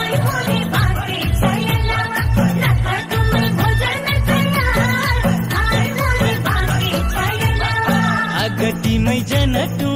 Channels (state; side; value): identical; both; correlation 1.00